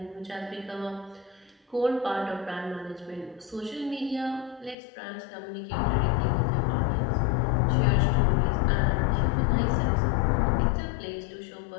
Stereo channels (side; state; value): right; drops out; at 4.8 s